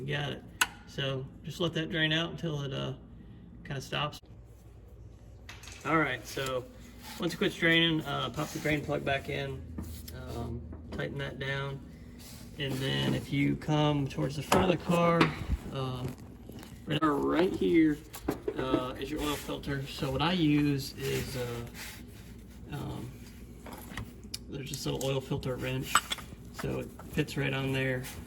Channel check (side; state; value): both; identical; correlation 1.00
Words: got it. So just let that drain out until it kind of stops. All right, so once it quits draining, pop the drain plug back in, tighten that down, and then if you come towards the front of the car, right here is your oil filter. So what I use is there's this little oil filter wrench, so it fits right on there.